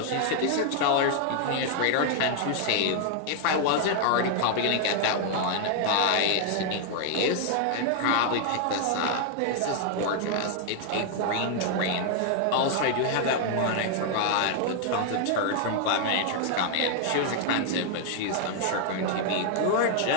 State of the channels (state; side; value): different; both; correlation 0.00